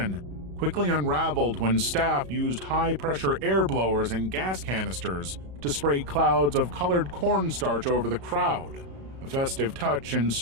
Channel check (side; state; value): left; late; 34 ms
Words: quickly unraveled when staff used high-pressure air blowers and gas canisters to spray clouds of colored cornstarch over the crowd, a festive touch